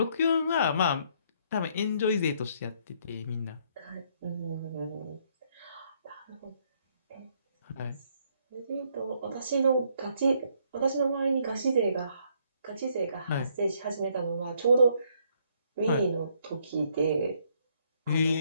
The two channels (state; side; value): inverted; both; correlation -0.69